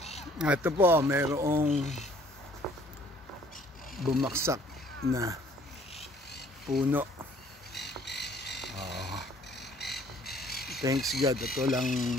Ito po, mayroong bumaksak na puno. Thanks God, ito lang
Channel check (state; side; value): normal; both; correlation 0.58